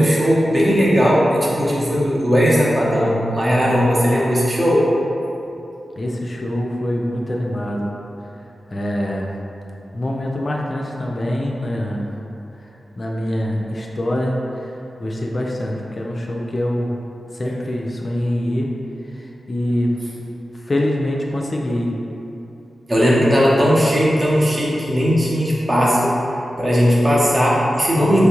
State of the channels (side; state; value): both; normal; correlation 0.93